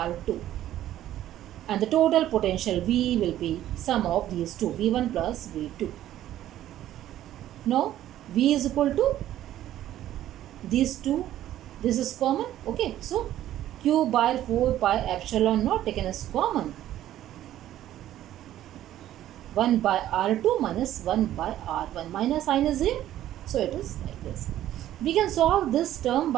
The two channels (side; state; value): left; quieter; 12.7 dB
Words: and the total potential V will be sum of these two, V1 plus V2. Now V is equal to these two, this is common. Okay, so q by 4 pi epsilon naught taken as common, 1 by r2 minus 1 by r1, minus sign is here, so it is like this. We can solve this term